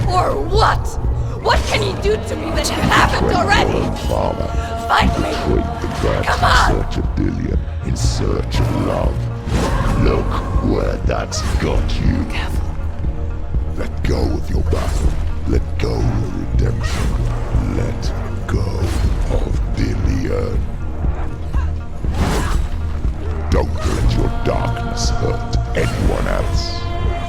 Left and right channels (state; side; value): identical; both; correlation 1.00